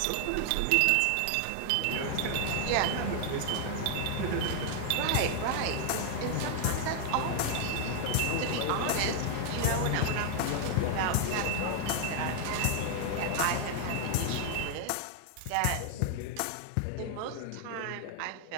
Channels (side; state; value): both; different; correlation 0.00